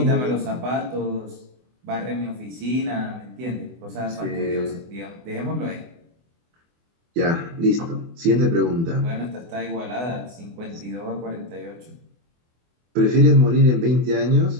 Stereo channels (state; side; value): late; left; 24 ms